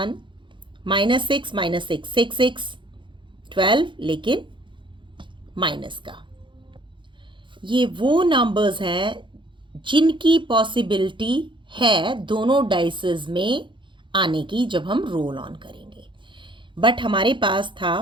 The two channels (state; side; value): late; left; 0.23 ms